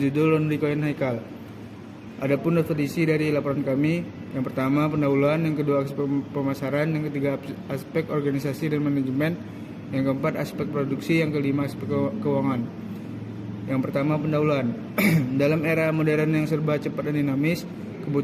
Laundry Coin Haikal. Adapun definisi dari laporan kami, yang pertama pendahuluan, yang kedua aspek pemasaran, yang ketiga aspek organisasi dan manajemen, yang keempat aspek produksi, yang kelima aspek keuangan. Yang pertama pendahuluan. Dalam era modern yang serba cepat dan dinamis,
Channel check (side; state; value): both; identical; correlation 1.00